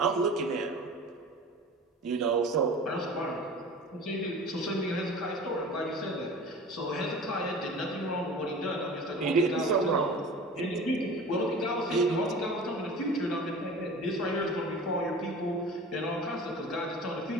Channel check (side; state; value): both; normal; correlation 0.39